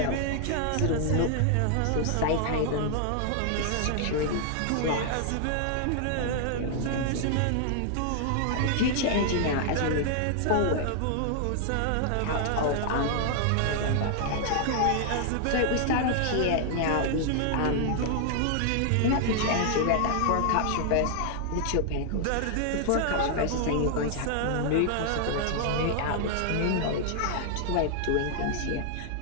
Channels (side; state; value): both; different; correlation -0.01